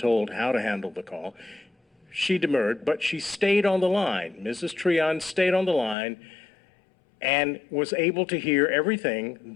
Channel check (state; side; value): drops out; right; at 6.0 s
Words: how to handle the call, she demurred, but she stayed on the line. Mrs. Treon stayed on the line and was able to hear everything